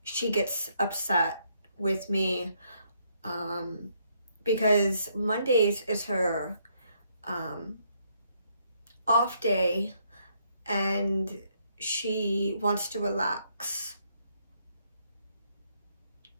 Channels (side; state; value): both; inverted; correlation -0.72